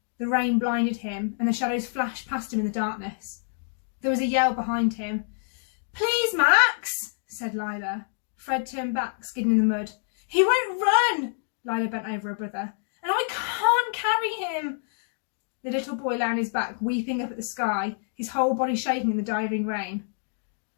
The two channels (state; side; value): silent; right; digital silence